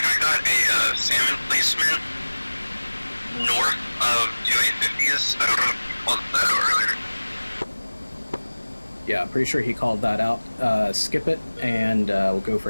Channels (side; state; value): both; inverted; correlation -1.00